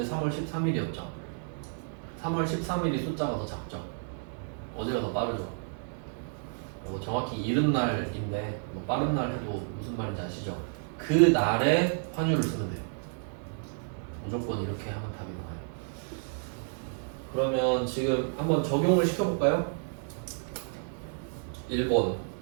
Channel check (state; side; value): silent; left; 57 dB below the other